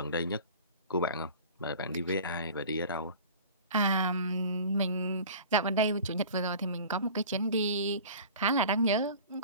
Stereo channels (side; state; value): both; inverted; correlation -0.42